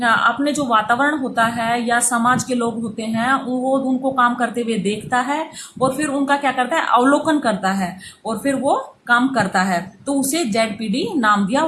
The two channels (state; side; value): identical; both; correlation 1.00